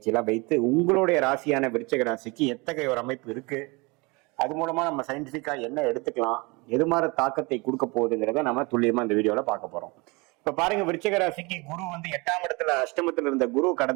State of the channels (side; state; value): left; quieter; 26.9 dB